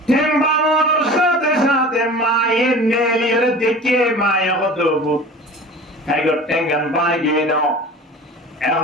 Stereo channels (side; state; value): both; normal; correlation 0.39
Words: ঠ্যাং বাঙানোর সাথে সাথে মায়ের নেলিয়ে দেখে মায়ে হতো ভাগত ঠ্যাঙ্গান বাগি নাও